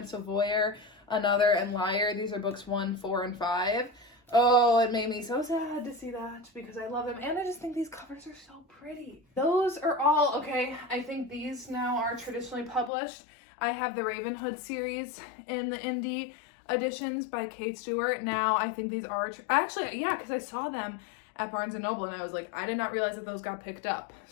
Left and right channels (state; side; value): drops out; right; at 12.9 s